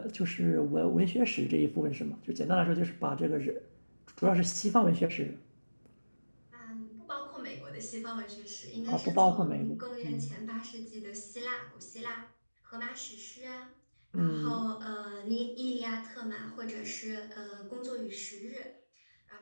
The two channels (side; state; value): both; inverted; correlation -1.00